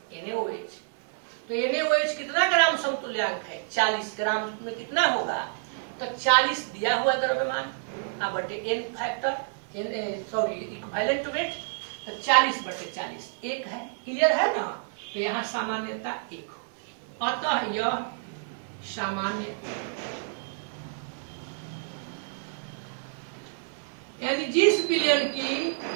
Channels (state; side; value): silent; left; 59 dB below the other